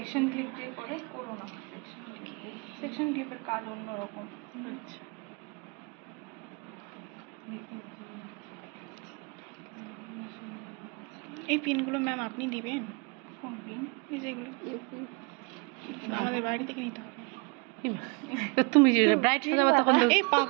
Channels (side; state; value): left; quieter; 31.5 dB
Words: ক্লিপ দিয়ে করে, করো না সেকশন ক্লিপের কাজ অন্যরকম। আচ্ছা এই পিনগুলো ম্যাম আপনি দিবেন? কোন পিন? এই যেগুলো আমাদের বাইরে থেকে নিতে হবে। তুমি যে ব্রাইট সাজাবা তখন এই